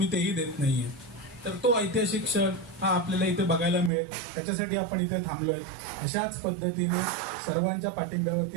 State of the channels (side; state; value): left; drops out; at 3.9 s